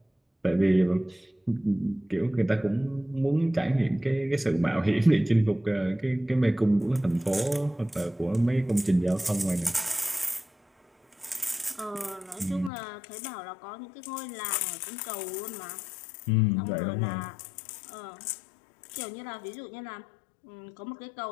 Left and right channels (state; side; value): drops out; right; at 12.7 s